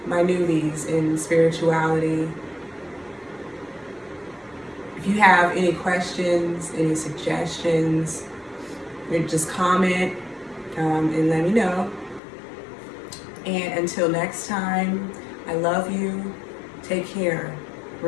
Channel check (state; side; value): drops out; right; at 12.2 s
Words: my newbies in spirituality. If you have any questions, any suggestions, just comment and let me know. And until next time, I love you. Take care.